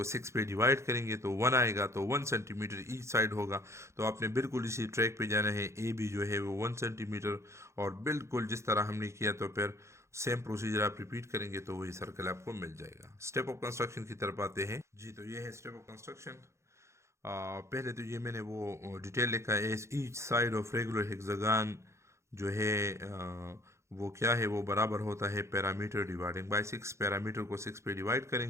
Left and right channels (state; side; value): late; left; 0.14 ms